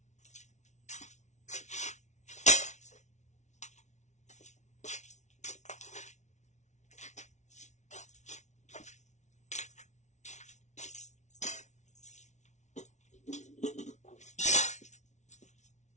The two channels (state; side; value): late; right; 0.33 ms